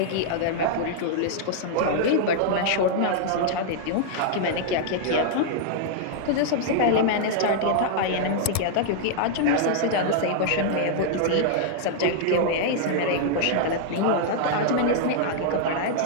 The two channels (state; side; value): different; both; correlation -0.01